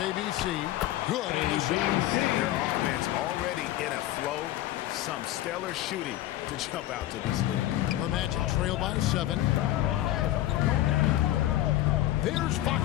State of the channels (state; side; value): quieter; right; 14.6 dB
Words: ABC. Good in the shot. Their offense already in a flow. Some stellar shooting to jump out to this lead. The Magic trail by 7. There's